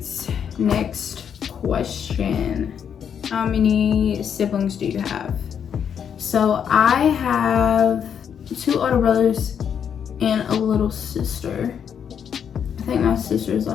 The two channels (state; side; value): quieter; right; 8.0 dB